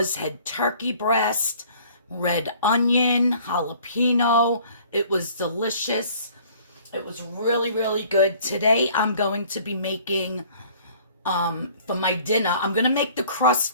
head turkey breast, red onion, jalapeno. It was delicious. It was really, really good. Today I'm going to be making, for my dinner, I'm going to make the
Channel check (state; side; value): inverted; both; correlation -0.54